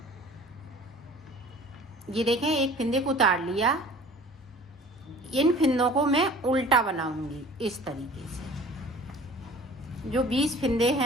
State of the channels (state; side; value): normal; both; correlation 0.46